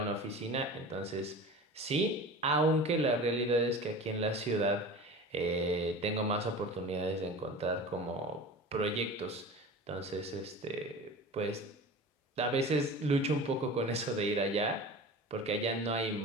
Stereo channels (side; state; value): both; normal; correlation 0.35